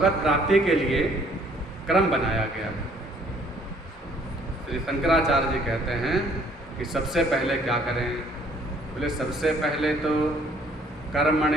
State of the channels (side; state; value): both; normal; correlation 0.61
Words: प्राप्ति के लिए क्रम बनाया गया है। श्री शंकराचार्य जी कहते हैं कि सबसे पहले क्या करें? बोले सबसे पहले तो